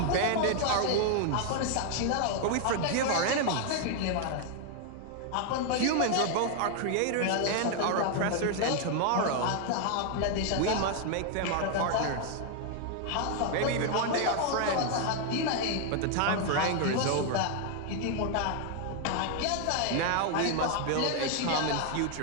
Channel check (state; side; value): different; both; correlation 0.00